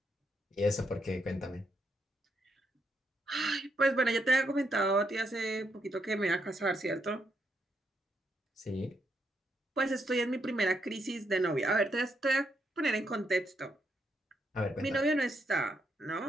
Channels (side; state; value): both; normal; correlation 0.79